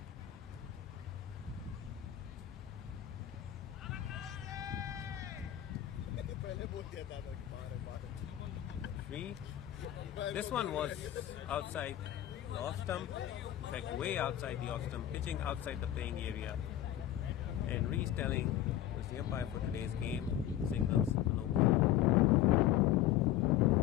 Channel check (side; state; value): right; quieter; 12.3 dB